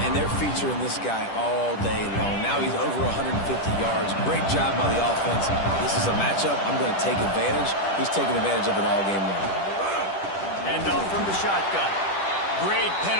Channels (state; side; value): late; right; 10 ms